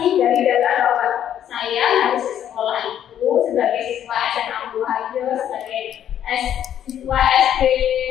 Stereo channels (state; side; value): quieter; right; 10.3 dB